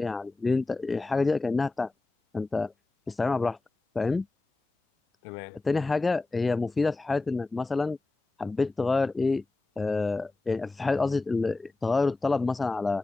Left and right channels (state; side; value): quieter; right; 3.3 dB